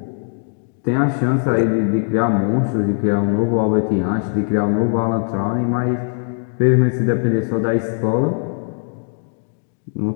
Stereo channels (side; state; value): right; silent; 66 dB below the other